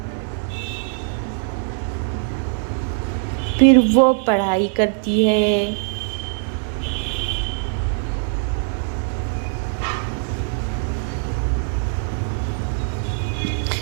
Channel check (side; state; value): left; silent; digital silence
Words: फिर वो पढ़ाई करती है।